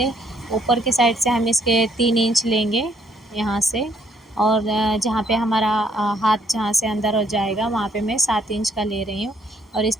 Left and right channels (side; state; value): both; normal; correlation 0.67